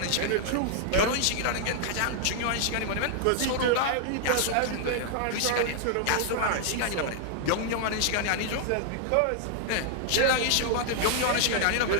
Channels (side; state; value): both; different; correlation -0.01